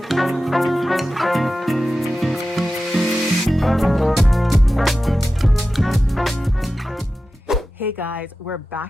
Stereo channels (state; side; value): normal; both; correlation 0.93